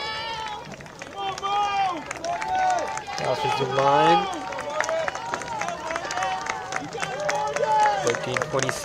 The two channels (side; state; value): both; identical; correlation 1.00